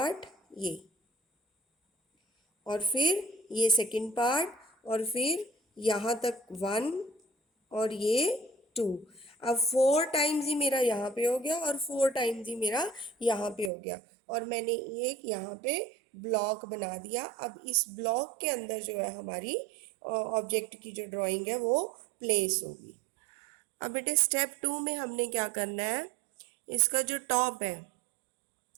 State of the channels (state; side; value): drops out; left; at 13.7 s